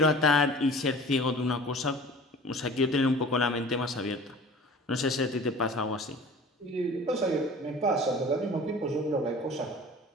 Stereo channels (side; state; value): both; normal; correlation 0.43